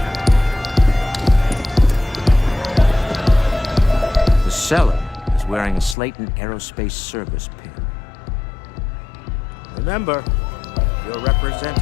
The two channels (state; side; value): drops out; right; at 6.0 s